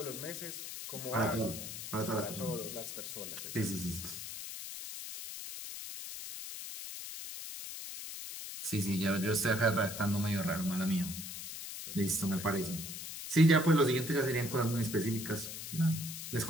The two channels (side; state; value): left; noise; hiss, 8 dB below the sound